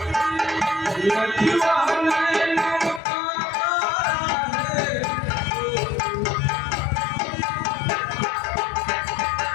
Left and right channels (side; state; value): right; drops out; at 3.0 s